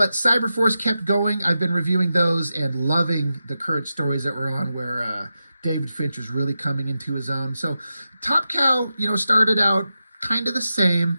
Cyberforce kept going. I've been reviewing those and loving the current stories that we're on where David Finch is really coming into his own. So Top Cow, started out kind of the same,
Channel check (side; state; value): both; inverted; correlation -0.90